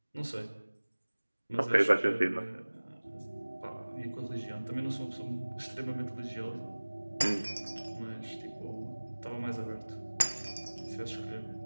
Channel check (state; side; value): inverted; both; correlation -1.00